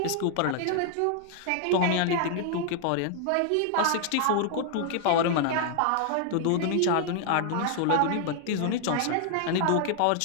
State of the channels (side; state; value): both; different; correlation 0.00